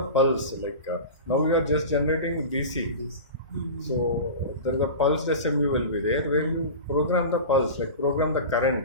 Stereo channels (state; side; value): inverted; both; correlation -0.30